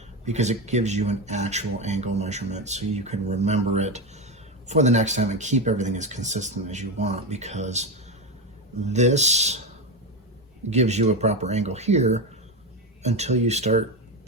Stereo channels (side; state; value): both; normal; correlation 0.14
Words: because it gives you an actual angle measurement so you can remember it for the next time and keep everything as consistent as you want, because this gives you a proper angle here until you start